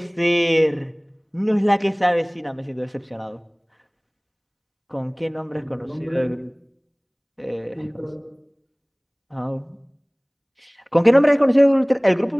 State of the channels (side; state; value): both; identical; correlation 1.00